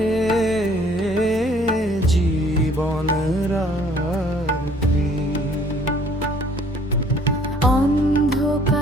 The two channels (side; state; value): both; normal; correlation 0.58